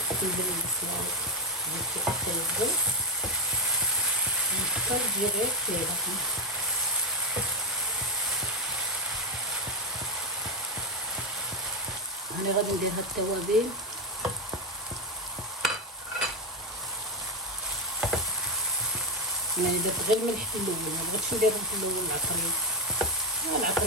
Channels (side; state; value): both; normal; correlation 0.08